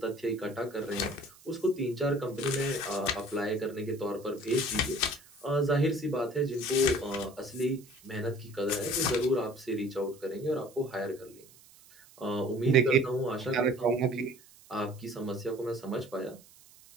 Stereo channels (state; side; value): noise; right; hiss, 24 dB below the sound